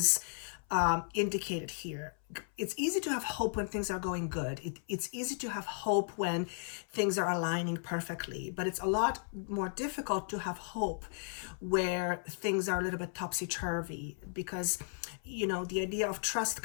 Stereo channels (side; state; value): right; silent; 54 dB below the other